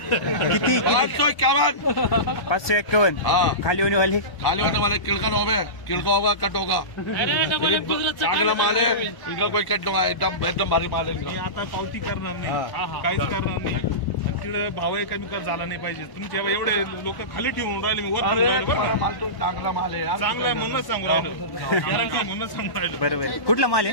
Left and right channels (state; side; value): late; right; 1.0 ms